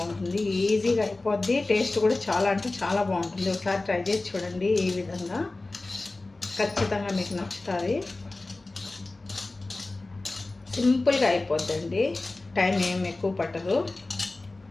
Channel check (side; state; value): right; quieter; 3.1 dB